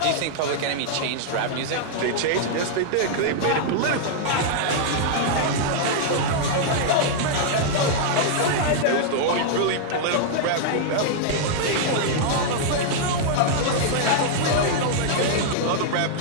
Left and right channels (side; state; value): both; different; correlation -0.01